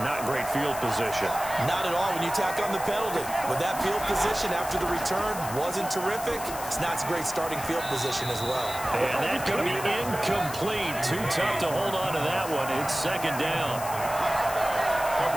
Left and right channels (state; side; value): noise; left; hiss, 11 dB below the sound